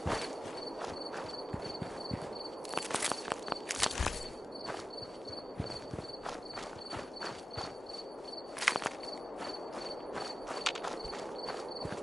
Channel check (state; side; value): normal; both; correlation 0.96